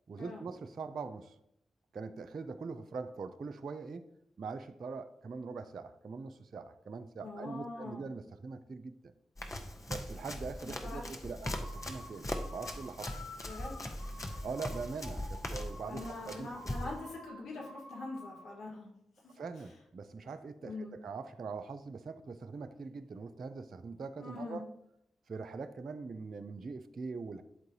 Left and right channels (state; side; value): normal; both; correlation 0.84